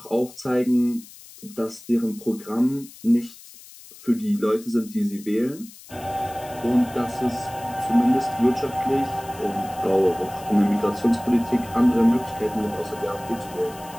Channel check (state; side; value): noise; left; hiss, 19 dB below the sound